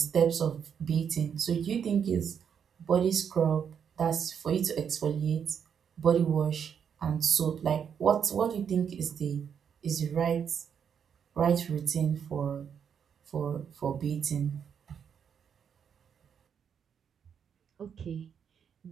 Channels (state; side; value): quieter; left; 7.6 dB